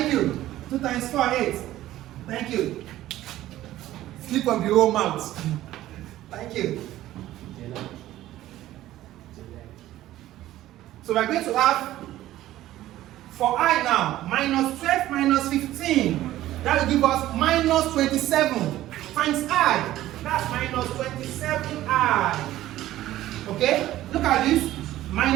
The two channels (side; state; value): left; quieter; 14.5 dB